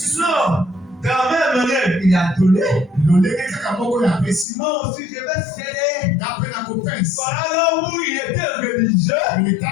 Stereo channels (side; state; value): right; drops out; at 4.5 s